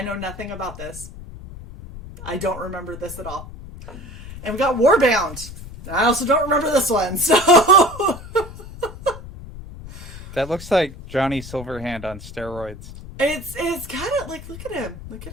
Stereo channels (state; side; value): noise; left; rumble, 14 dB below the sound